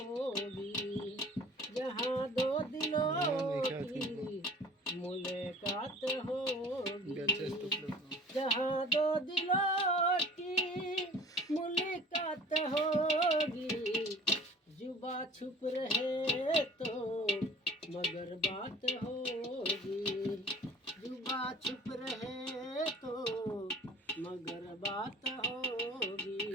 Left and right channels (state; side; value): normal; both; correlation 0.46